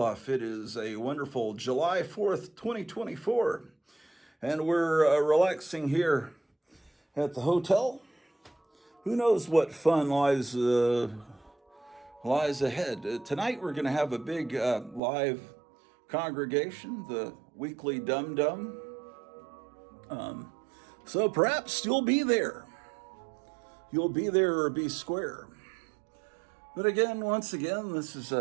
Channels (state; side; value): drops out; left; at 15.0 s